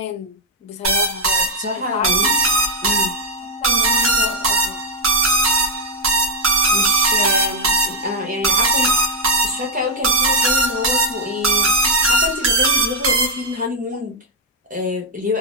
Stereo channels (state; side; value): normal; both; correlation 0.00